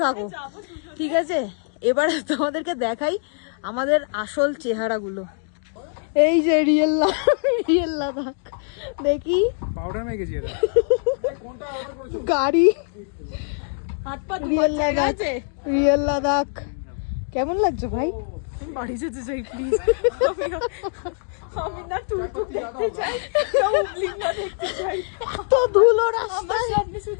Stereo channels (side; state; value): right; silent; digital silence